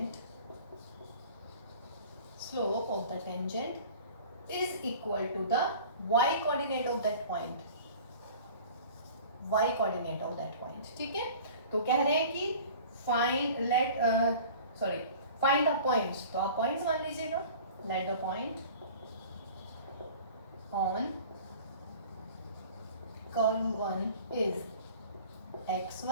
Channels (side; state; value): both; inverted; correlation -0.44